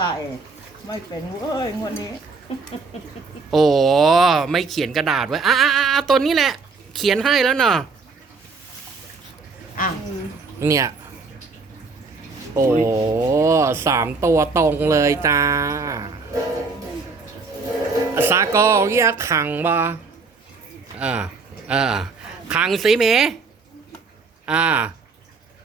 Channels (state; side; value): quieter; left; 4.3 dB